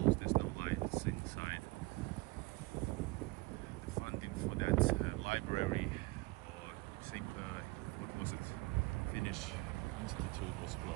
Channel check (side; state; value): left; quieter; 23.9 dB